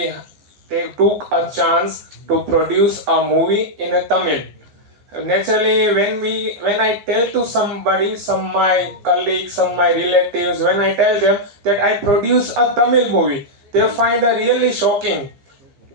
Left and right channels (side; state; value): left; late; 15 ms